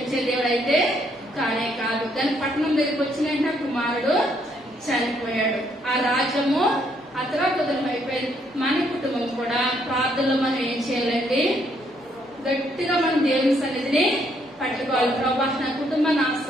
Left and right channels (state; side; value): normal; both; correlation 0.71